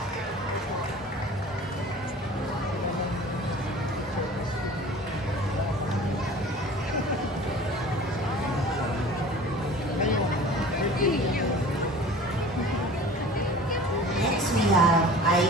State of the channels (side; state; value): both; normal; correlation 0.42